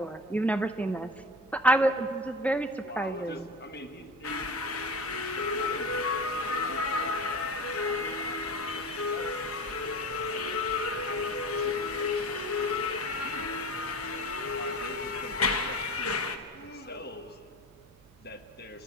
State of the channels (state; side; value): noise; right; hum, 27 dB below the sound